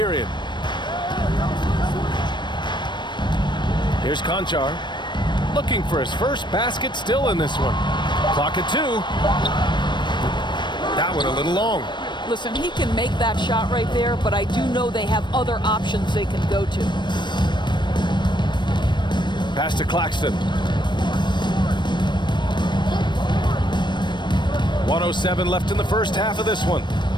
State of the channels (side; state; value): right; late; 0.22 ms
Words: Here's Conchar. Looking for his first basket, still in this one. Clock at 2. That one a little long. Listen, he can make that shot right there, but I do know they have other options they can go to. Pass to Claxton. 1:07 left in the first half of this one.